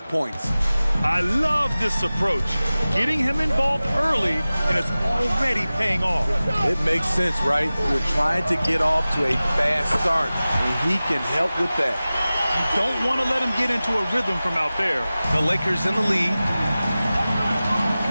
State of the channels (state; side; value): inverted; both; correlation -0.97